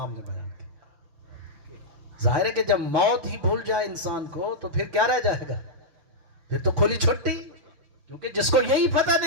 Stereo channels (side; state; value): left; late; 5.9 ms